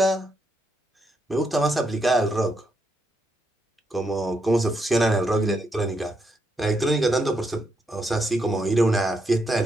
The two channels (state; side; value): normal; both; correlation 0.79